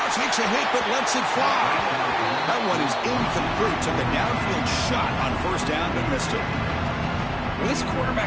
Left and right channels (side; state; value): both; identical; correlation 1.00